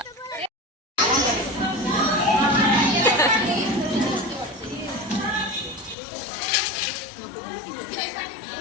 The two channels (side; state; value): right; drops out; at 6.0 s